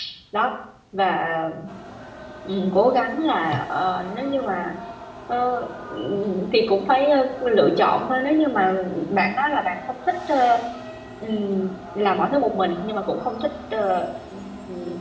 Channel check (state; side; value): identical; both; correlation 1.00